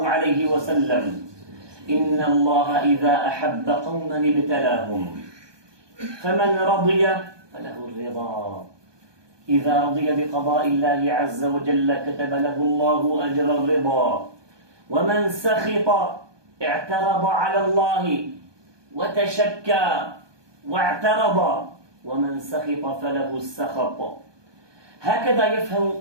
عليه وسلم: إن الله إذا أحب قوما ابتلاهم، فمن رضي فله الرضا. إذا رضي بقضاء الله عز وجل كتب له الله أجر الرضا، ومن سخط اعترض على الله وتشكى واعترض، ومن سخط فله السخط. هكذا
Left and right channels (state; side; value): late; left; 1.2 ms